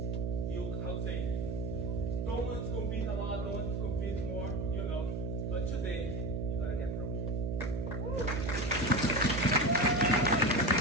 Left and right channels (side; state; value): right; noise; hum, 2 dB below the sound